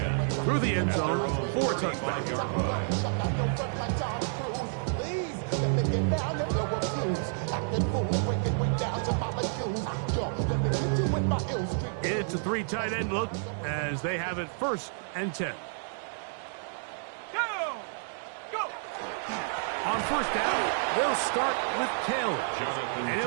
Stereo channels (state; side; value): silent; left; digital silence